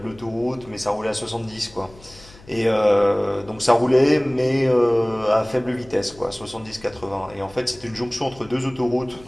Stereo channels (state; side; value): noise; left; hum, 23 dB below the sound